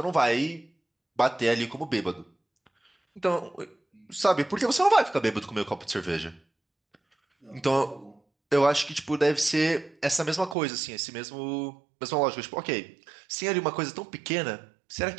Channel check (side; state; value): left; drops out; at 10.6 s